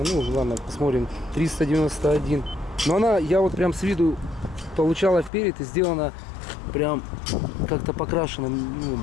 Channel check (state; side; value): drops out; right; at 5.3 s